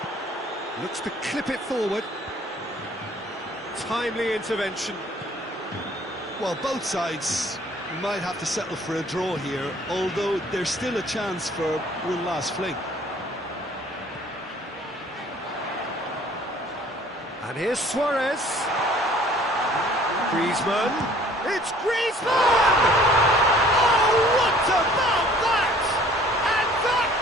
Looks to clip it forward. Timely intervention. Well, both sides might have to settle for a draw here, although there's still a chance for one last fling. And here's Suarez. Griezmann. It's Griezmann! Oh, what about that? And that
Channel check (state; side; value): normal; both; correlation 0.54